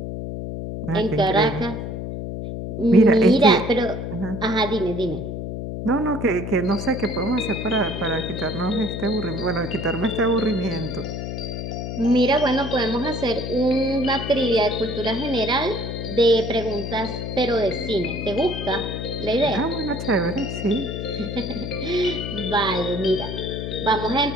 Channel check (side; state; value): left; noise; hum, 6 dB below the sound